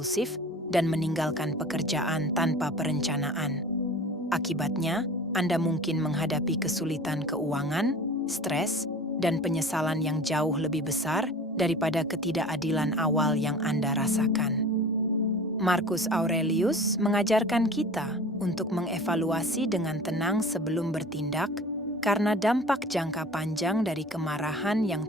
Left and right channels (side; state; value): both; normal; correlation 0.40